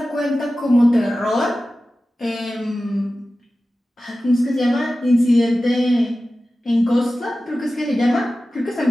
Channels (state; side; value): normal; both; correlation 0.95